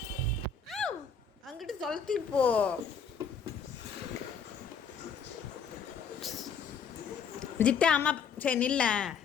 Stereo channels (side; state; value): right; quieter; 6.1 dB